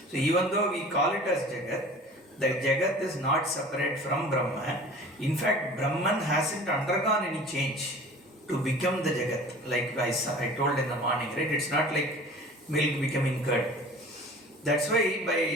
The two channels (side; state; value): both; normal; correlation 0.43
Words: So even though we call it as jagat, the jagat is not separate from Brahma. In fact, Brahman hasn't undergone any change to become the jagat. Like I told in the morning, right? It's not like milk becoming curd. That's why,